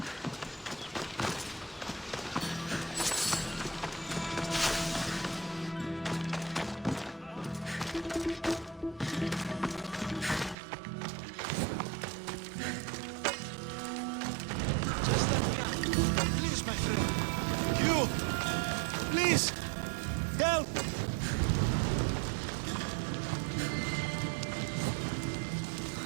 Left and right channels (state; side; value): drops out; left; at 10.6 s